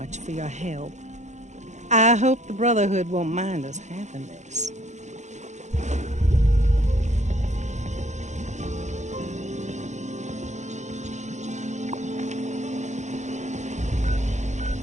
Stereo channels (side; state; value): left; late; 0.34 ms